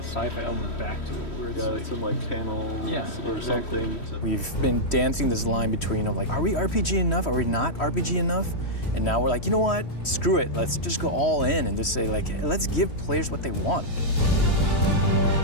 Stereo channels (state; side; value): late; right; 3.1 ms